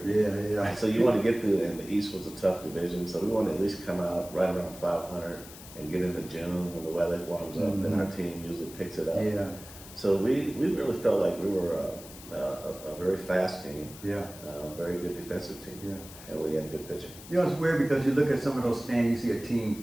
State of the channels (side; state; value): left; noise; hiss, 16 dB below the sound